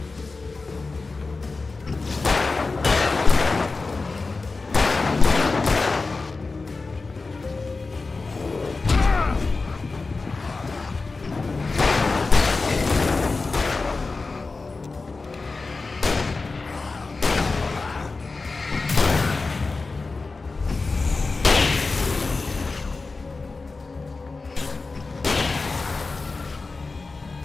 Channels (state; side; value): quieter; right; 3.9 dB